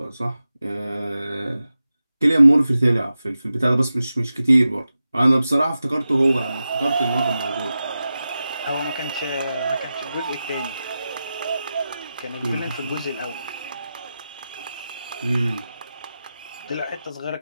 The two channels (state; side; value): inverted; both; correlation -0.92